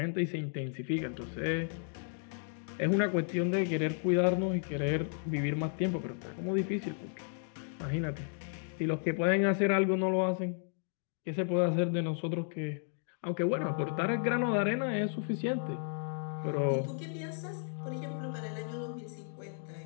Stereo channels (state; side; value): silent; right; digital silence